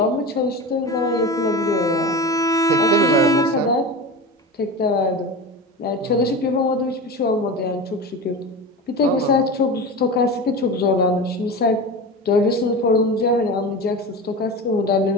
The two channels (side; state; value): both; normal; correlation 0.27